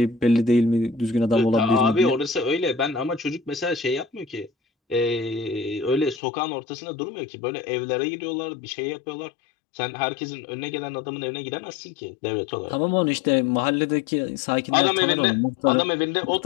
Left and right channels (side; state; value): right; drops out; at 6.2 s